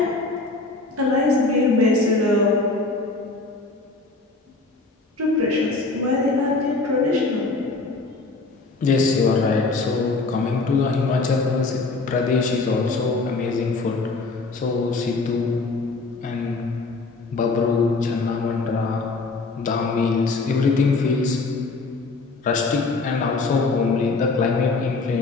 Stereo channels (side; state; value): right; quieter; 3.7 dB